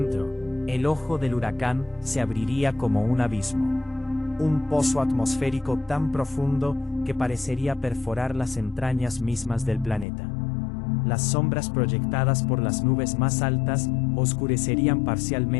el ojo del huracán se abriría como un abismo. Un pozo atmosférico tan profundo que parecería perforar las entrañas mismas del planeta. Las sombras proyectadas por las nubes más altas oscurecerían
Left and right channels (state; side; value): drops out; right; at 10.1 s